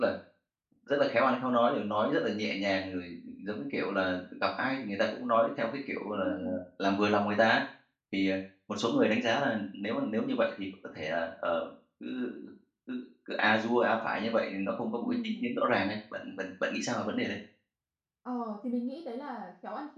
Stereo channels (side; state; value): both; identical; correlation 1.00